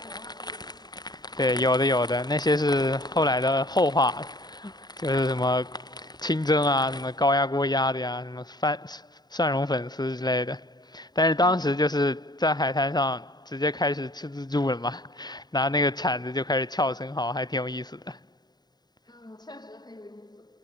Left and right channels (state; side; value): late; right; 0.20 ms